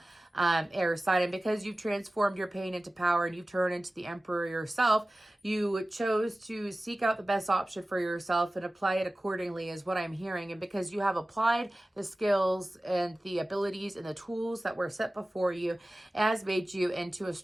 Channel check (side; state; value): both; normal; correlation 0.96